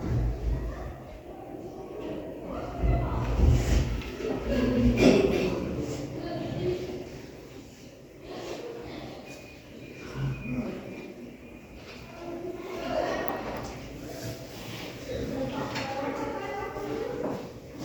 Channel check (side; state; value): both; identical; correlation 1.00